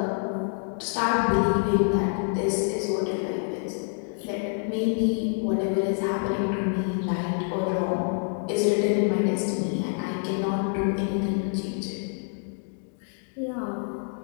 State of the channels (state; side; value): silent; right; 56 dB below the other